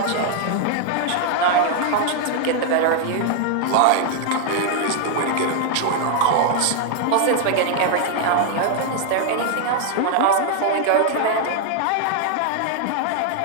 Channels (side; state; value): both; different; correlation 0.00